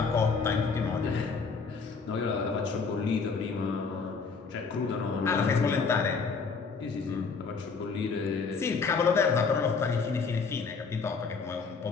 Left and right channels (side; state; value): right; quieter; 5.0 dB